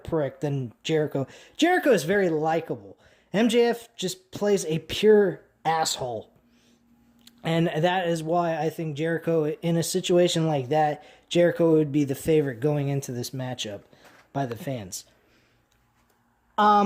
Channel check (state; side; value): identical; both; correlation 1.00